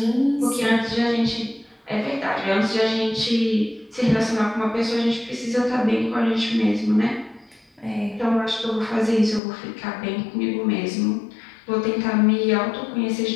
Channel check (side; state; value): right; drops out; at 9.4 s